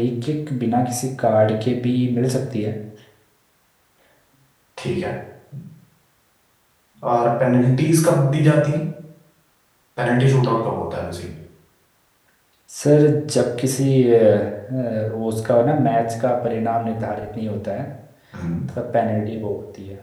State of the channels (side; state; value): both; identical; correlation 1.00